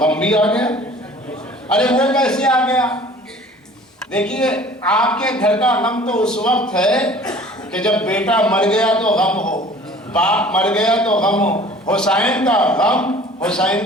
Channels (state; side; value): normal; both; correlation 0.48